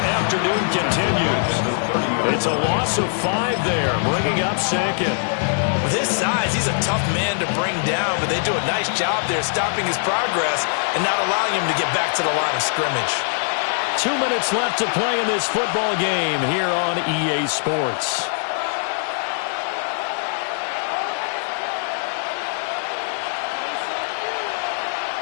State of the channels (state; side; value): silent; right; digital silence